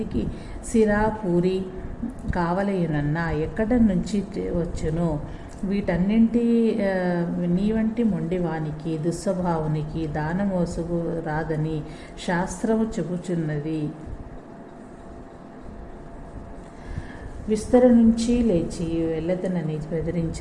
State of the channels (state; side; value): identical; both; correlation 1.00